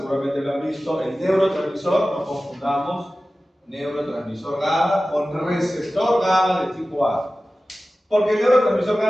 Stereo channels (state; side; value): normal; both; correlation 0.96